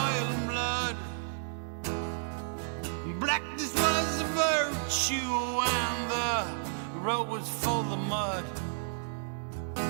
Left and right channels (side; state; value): left; silent; digital silence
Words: and blood. Blackness was a virtue and the road was full of mud.